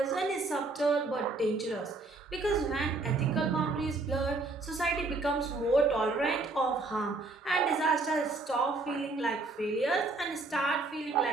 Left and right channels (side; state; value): left; quieter; 3.5 dB